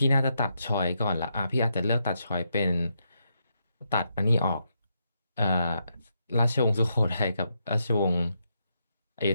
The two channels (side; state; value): both; inverted; correlation -0.81